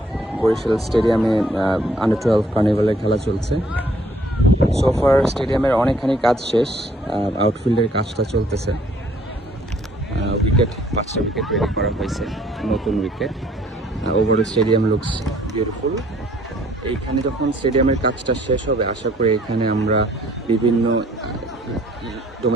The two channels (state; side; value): normal; both; correlation 0.61